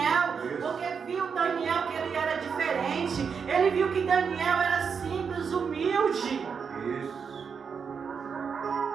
porque viu Daniel que ele era diferente. Ele viu que Daniel era simples, humilde.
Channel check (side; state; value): left; quieter; 6.2 dB